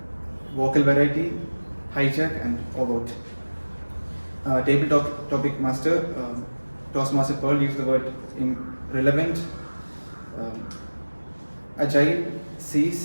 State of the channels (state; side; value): inverted; both; correlation -1.00